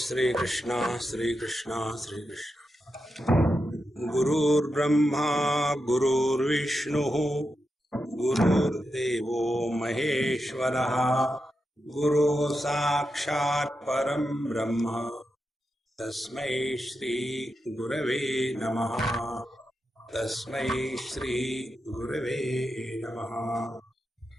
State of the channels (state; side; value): normal; both; correlation 0.88